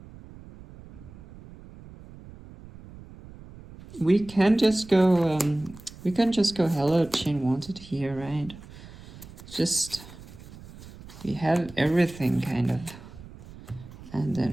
We can just go Hallowed chain wanted here, right? Just we have everything kind of. And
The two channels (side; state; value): right; noise; rumble, 18 dB below the sound